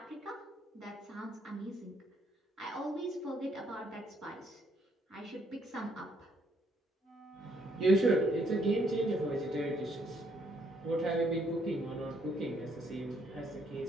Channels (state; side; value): normal; both; correlation 0.70